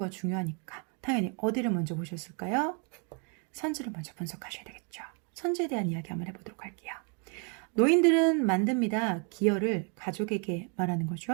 중요하니까 당연히 어디를 먼저 보셨을까요? 선지를 먼저 분석하셔야 되겠죠. 선지에 대한 이야기 한번 해보도록 할게요. 노인들은 만듭니다. 기여를 가족에게 말하는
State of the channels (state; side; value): quieter; left; 38.0 dB